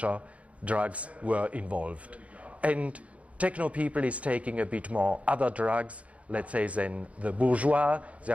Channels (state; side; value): late; left; 0.065 ms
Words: drugs were involved. And techno people is taking a bit more other drugs, let's say, than the bourgeois. They